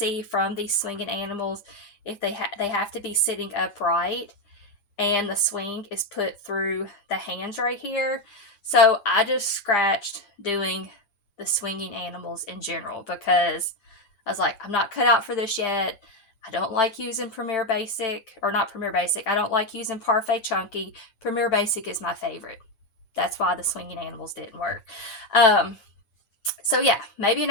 from these swinging animals, if they have to be sitting upright, and the swing is put through the hands right here. So I just scratched doing the swinging animals in general because I was like, I'm not cut out for this yet. I don't like using Premier Basic, or not Premier Basic. I don't like using Parfait Chunky. Premier Basic is my favorite. That's why the swinging animals didn't work. So yeah, maybe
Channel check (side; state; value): right; late; 9.9 ms